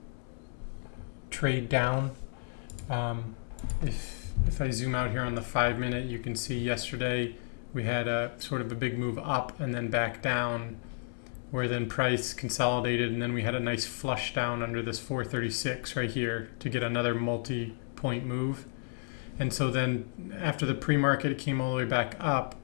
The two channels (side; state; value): right; silent; digital silence